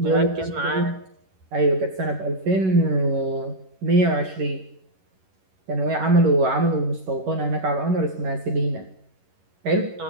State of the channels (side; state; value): left; late; 11 ms